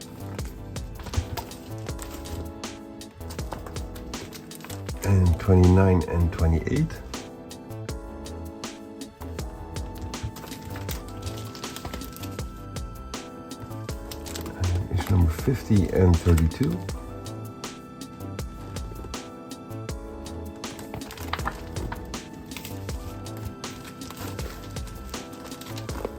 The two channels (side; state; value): both; identical; correlation 1.00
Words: And 29 and 28. Number 50 and 32.